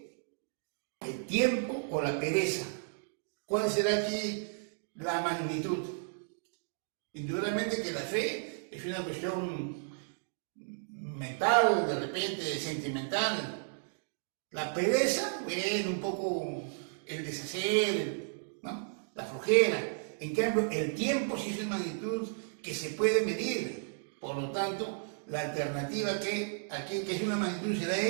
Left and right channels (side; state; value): left; silent; digital silence